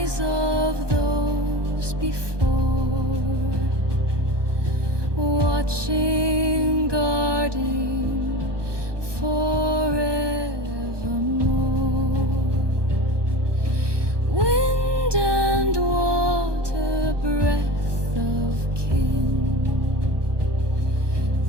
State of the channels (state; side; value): late; left; 1.2 ms